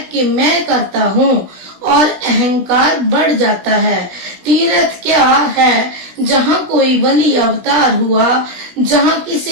कि मैं करता हूँ और अहंकार बढ़ जाता है। तीर्थ क्या है? जहाँ कोई वली अवतार हुआ, जहाँ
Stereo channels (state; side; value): late; left; 16 ms